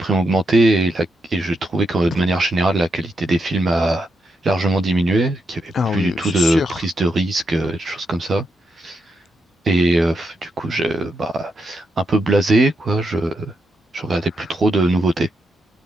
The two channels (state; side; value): normal; both; correlation 0.83